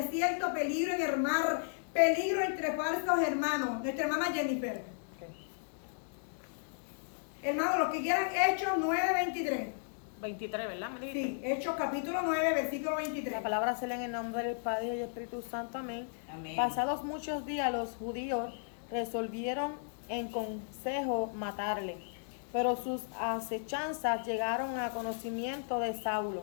peligro en el mar, peligro entre falsos hermanos. Nuestra hermana Jennifer. Hermanos, los que quieran, Hechos 9:23. 23, ¿verdad? me dijiste? Sí, Hechos capítulo 9, versículo 23. La palabra se lee en el nombre del Padre y del Espíritu Santo. Amén. Amén. Pasados muchos días, los judíos resolvieron en consejo matarle, pero sus acechanzas llegaron a conocimiento de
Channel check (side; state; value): right; silent; digital silence